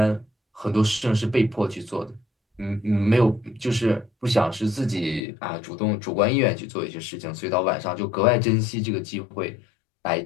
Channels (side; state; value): right; drops out; at 5.2 s